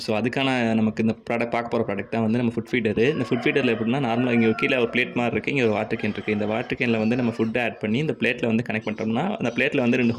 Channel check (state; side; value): identical; both; correlation 1.00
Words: ஸோ அதுக்கான நமக்கு இந்த பார்க்க போகிற ப்ராடக்ட் தான் வந்து நம்ம ஃபுட் ஃபீடரு. இந்த ஃபுட் ஃபீடரில் எப்படின்னா நார்மலாக இங்கே கீழே ஒரு பிளேட் மாதிரி இருக்குது, இங்கே ஒரு வாட்டர் கேன் இருக்குது. இந்த வாட்டர் கேனில் வந்து நம்ம ஃபுட்டை ஆட் பண்ணி இந்த பிளேட்டில் வந்து கனெக்ட் பண்ணிட்டோம்னா அந்த பிளேட்டில் வந்து 2